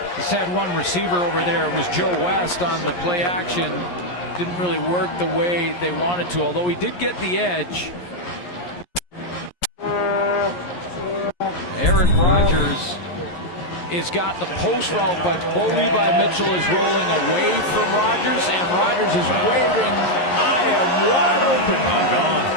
Just had one receiver over there. It was Joe West on the play action. Didn't really work the way they wanted to, although he did get the edge. Aaron Rodgers has got the post route, but Bo Levi Mitchell is rolling away from Rodgers, and Rodgers is waving, I am wide open. I'm gone.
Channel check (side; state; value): right; late; 11 ms